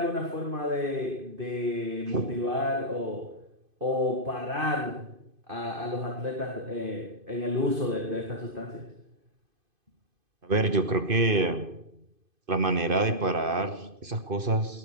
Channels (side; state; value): left; late; 2.5 ms